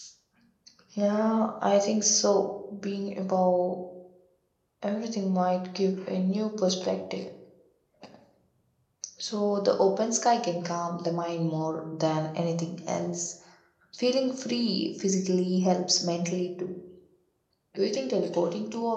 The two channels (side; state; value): both; identical; correlation 1.00